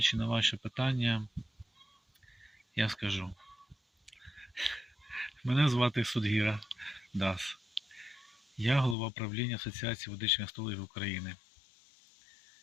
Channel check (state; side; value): drops out; right; at 9.0 s